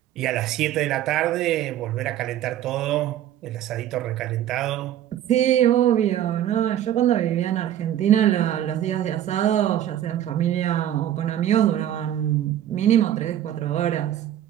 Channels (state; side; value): quieter; left; 11.6 dB